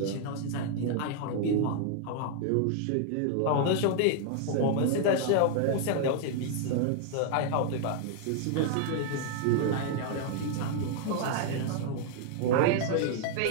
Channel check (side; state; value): both; different; correlation 0.00